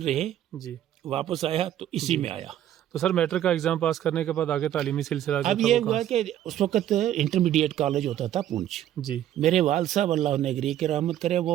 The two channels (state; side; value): quieter; left; 11.8 dB